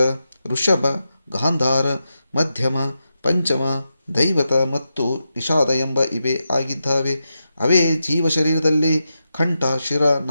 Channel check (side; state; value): both; inverted; correlation -0.88